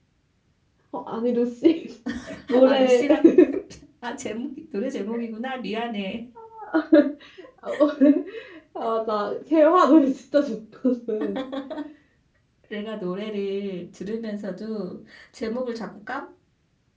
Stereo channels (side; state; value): both; identical; correlation 1.00